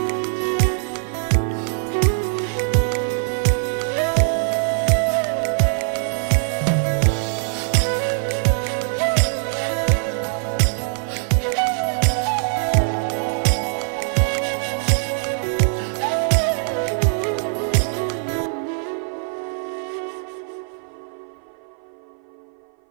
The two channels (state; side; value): silent; left; 56 dB below the other